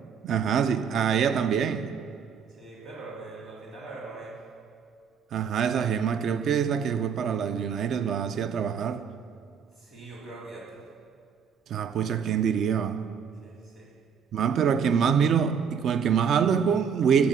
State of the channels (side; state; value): left; quieter; 7.0 dB